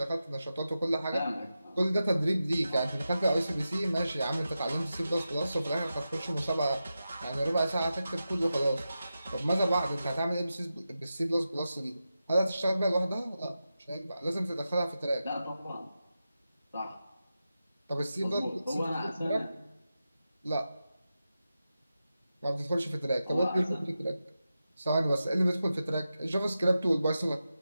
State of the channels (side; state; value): both; inverted; correlation -0.91